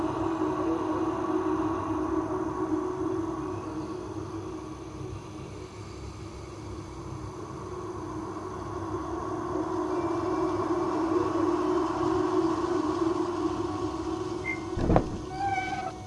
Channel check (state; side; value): identical; both; correlation 1.00